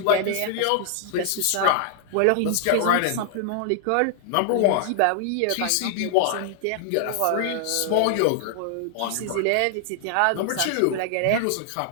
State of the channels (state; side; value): different; both; correlation 0.00